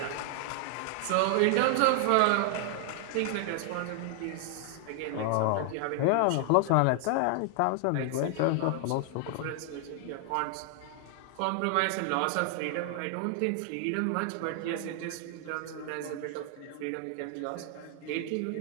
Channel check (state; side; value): different; both; correlation 0.00